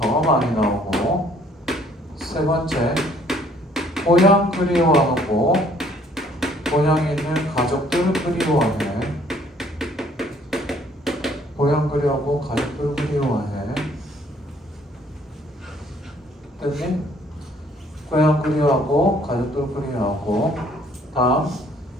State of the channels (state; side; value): normal; both; correlation 0.61